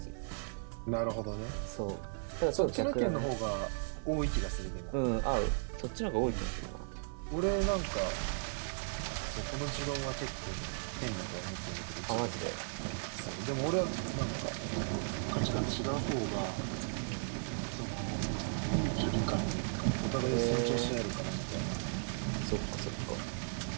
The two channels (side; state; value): left; silent; 54 dB below the other